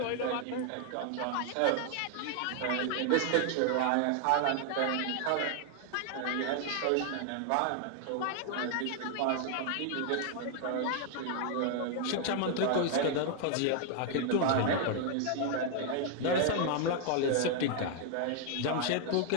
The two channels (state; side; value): different; both; correlation 0.00